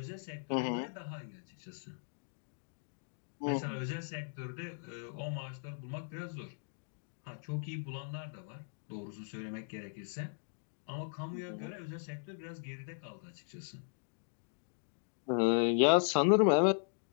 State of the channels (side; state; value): right; silent; digital silence